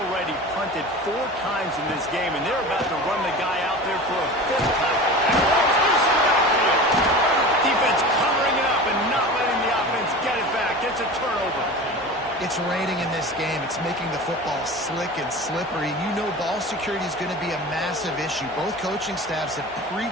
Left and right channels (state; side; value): normal; both; correlation 0.34